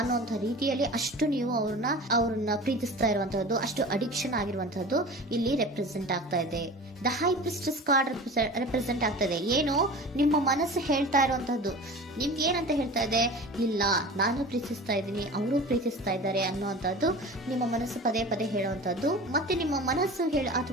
ರೀತಿಯಲ್ಲಿ ಅಷ್ಟು ನೀವು ಅವ್ರನ್ನ ಪ್ರೀತಿಸ್ತಾ ಇರುವಂತಹದ್ದು, ಅಷ್ಟು ಅಡಿಕ್ಷನ್ ಆಗಿರುವಂತಹದ್ದು ಇಲ್ಲಿ ರೆಪ್ರೆಸೆಂಟ್ ಆಗ್ತಾ ಇದೆ. The high priestess card represent ಆಗ್ತದೆ. ಏನು ನಿಮ್ಮ ಮನಸ್ಸು ಹೇಳ್ತಾ ಇರುವಂತಹದ್ದು, ನಿಮ್ಗೆ ಏನಂತ ಹೇಳ್ತಾ ಇದೆ, ಇಲ್ಲ ನಾನು ಪ್ರೀತಿಸ್ತಾ ಇದ್ದೀನಿ, ಅವರು ಪ್ರೀತಿಸ್ತಾ ಇದ್ದಾರೆ ಅನ್ನುವಂಥದ್ದು ನಿಮ್ಮ ಮನಸ್ಸು ಪದೇ ಪದೇ ಹೇಳುವಂತಹದ್ದು. ಮತ್ತೆ ನಿಮ್ಮ ಮನಸ್ಸು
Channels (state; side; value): normal; both; correlation 0.37